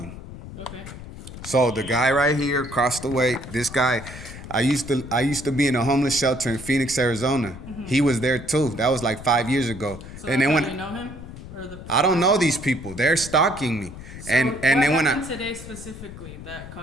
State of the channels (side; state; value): left; noise; rumble, 13 dB below the sound